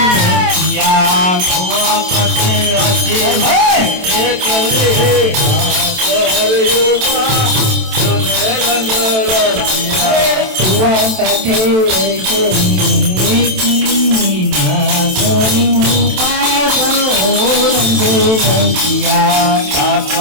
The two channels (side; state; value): left; late; 27 ms